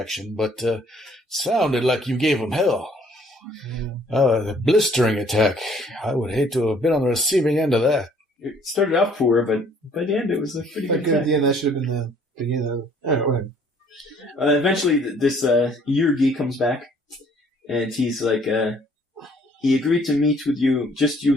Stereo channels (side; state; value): both; normal; correlation 0.59